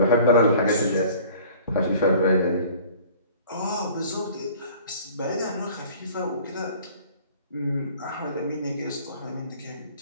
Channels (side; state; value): both; inverted; correlation -0.48